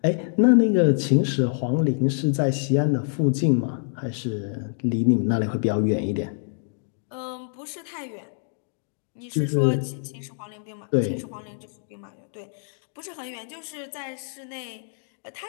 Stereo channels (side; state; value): right; silent; digital silence